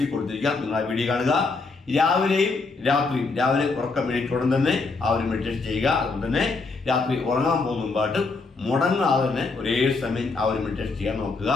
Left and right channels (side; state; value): right; quieter; 4.0 dB